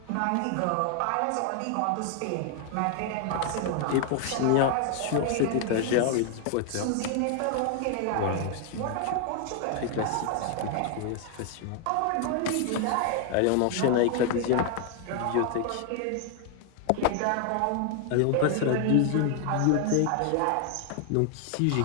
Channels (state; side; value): different; both; correlation 0.00